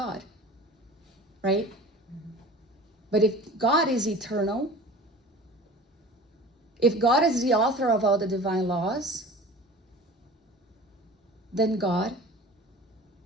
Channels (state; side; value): normal; both; correlation 0.40